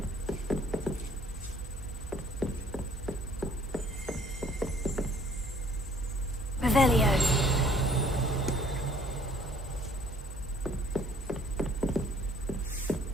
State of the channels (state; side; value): normal; both; correlation 0.59